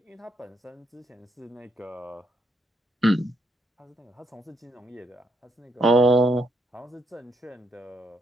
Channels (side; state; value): both; normal; correlation 0.76